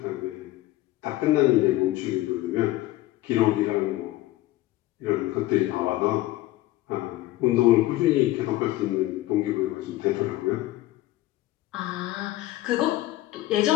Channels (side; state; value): right; quieter; 16.5 dB